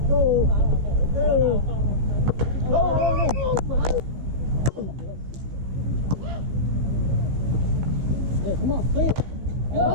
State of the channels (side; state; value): left; late; 15 ms